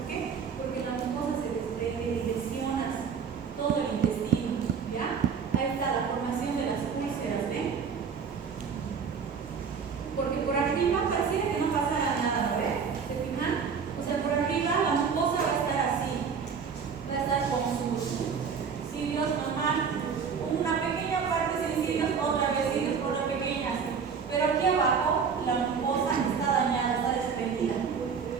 qué? Porque la mucosa se desprende y lesionas todo el intestino, ¿ya? Ahí está la formación de las úlceras, ¿ven? Porque por arriba pareciera que no pasara nada, ¿ven? ¿Se fijan? O sea, por arriba la mucosa va a estar así, va a estar con sus cilios normal, una pequeña parte sin cilios, otra vez cilios por una pequeña, pero aquí abajo la mucosa está dañada, está desprendida.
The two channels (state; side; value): quieter; left; 6.2 dB